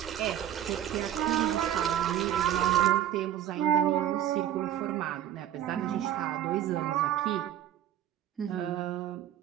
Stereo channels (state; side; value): quieter; left; 11.2 dB